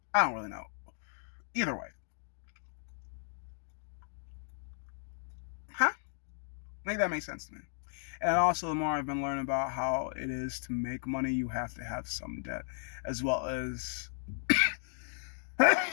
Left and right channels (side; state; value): right; silent; digital silence